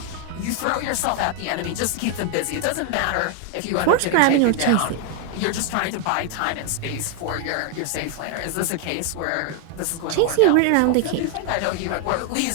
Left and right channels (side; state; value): both; different; correlation 0.00